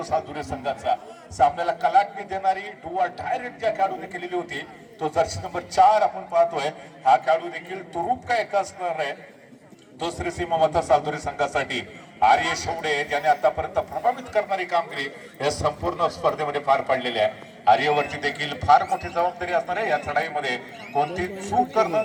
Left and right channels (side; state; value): both; identical; correlation 1.00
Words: सालदुरे संघाचा. सामन्याला कलाटणी देणारी डू ऑर डाय रेड ज्या खेळाडूने केलेली होती तो जर्सी नंबर 4 आपण पाहतोय. हा खेळाडू देखील तुरूप का एक असणार आहे तो श्री सीमा माता सालदुरे संघासाठी. आर्य शेवडे ज्याने आतापर्यंत प्रभावित करणारी कामगिरी या संपूर्ण स्पर्धेमध्ये पार पाडलेली आहे. आर्यवरती देखील फार मोठी जबाबदारी असणार आहे. या चढाईमध्ये कोणती चूक